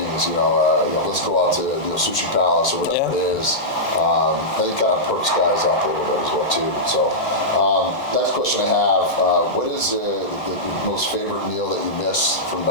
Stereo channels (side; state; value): both; normal; correlation -0.12